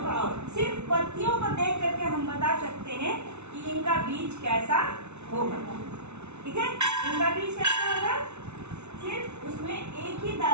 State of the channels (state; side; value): late; left; 0.81 ms